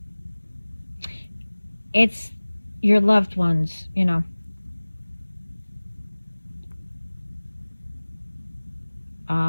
It's your loved ones.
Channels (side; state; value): both; inverted; correlation -1.00